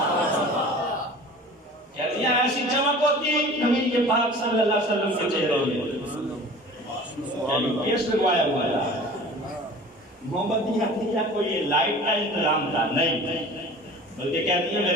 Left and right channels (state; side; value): normal; both; correlation 0.42